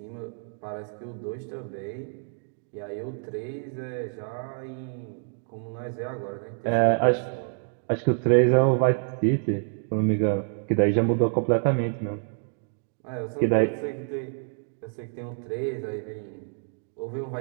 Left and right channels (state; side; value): silent; left; 60 dB below the other